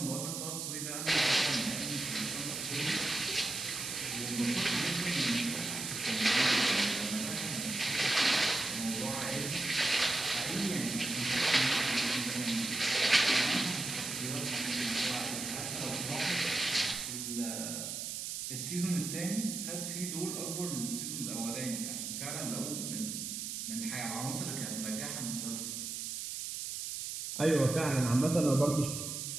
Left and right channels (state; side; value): noise; right; hiss, 5 dB below the sound